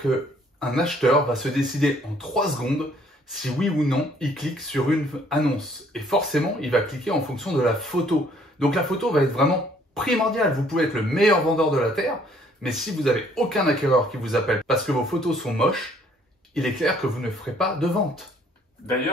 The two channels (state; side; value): normal; both; correlation 0.62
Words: qu'un acheteur va se décider en 3 secondes si oui ou non il clique sur une annonce. Et forcément, il va cliquer en fonction de la photo. Donc la photo va être vraiment primordiale. Vous pouvez être le meilleur vendeur de la Terre, mais si vous n'avez aucun acquéreur qui vous appelle parce que vos photos sont moches, il est clair que vous ne ferez pas de vente.